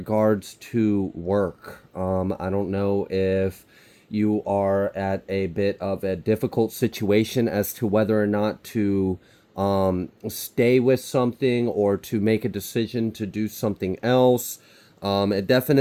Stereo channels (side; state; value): both; identical; correlation 1.00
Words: to work. I don't know if you are at a bit of a difficult situation as to whether or not to stay with something or to make a decision to do something else. It